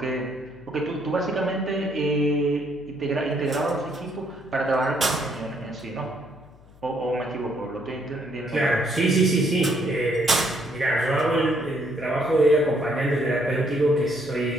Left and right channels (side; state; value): left; noise; hum, 24 dB below the sound